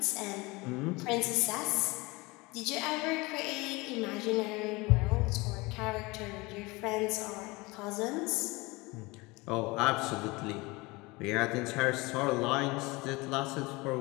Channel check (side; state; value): right; quieter; 23.9 dB